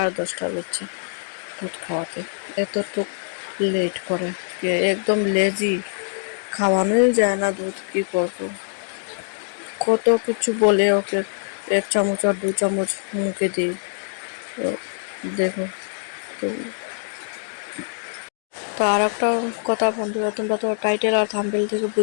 হচ্ছে দুধ খাওয়াতে। এতটুক লেট করে, একদম লেজি, খাওয়ানোই যায় না দুধ। কী করবো, কত কিছু বলে ওকে 1 চামচ আর 2 চামচ মুখে দিই। তো দেখো, তো তো আর একটা কথা বন্ধুরা, তোমরা তো টাইটেল আর থাম্বনেল থেকে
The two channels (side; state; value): right; silent; digital silence